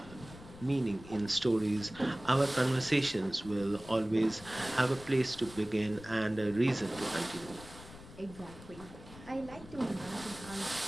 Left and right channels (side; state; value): left; noise; rumble, 17 dB below the sound